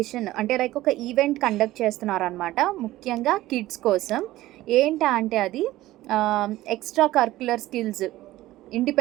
అంటే లైక్ ఒక ఈవెంట్ కండక్ట్ చేస్తున్నారనమాట. ముఖ్యంగా కిడ్స్ కోసం. ఏంటా అంటే అది extra curricular skills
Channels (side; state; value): left; quieter; 16.2 dB